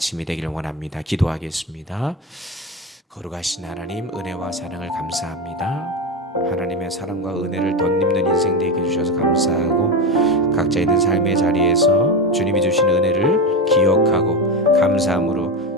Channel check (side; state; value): both; normal; correlation 0.17